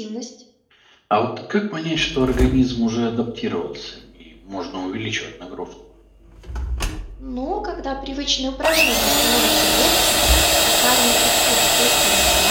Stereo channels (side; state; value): both; identical; correlation 1.00